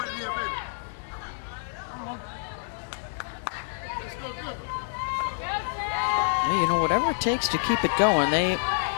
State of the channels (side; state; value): right; silent; 60 dB below the other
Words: You know, whatever it takes to keep it going. They